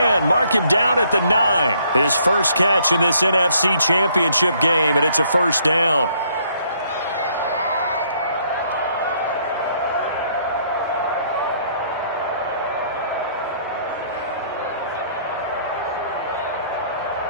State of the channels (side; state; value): both; inverted; correlation -0.66